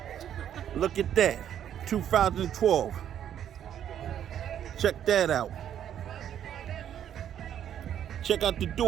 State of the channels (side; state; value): left; quieter; 10.0 dB